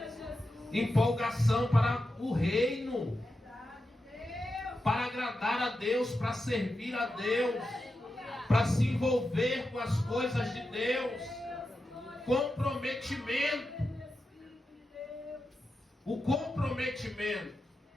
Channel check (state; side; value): normal; both; correlation 0.89